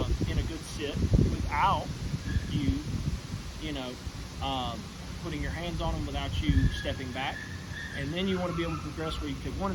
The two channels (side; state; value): both; identical; correlation 1.00